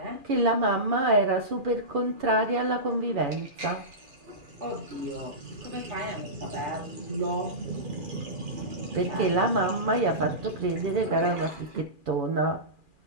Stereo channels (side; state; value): left; late; 2.4 ms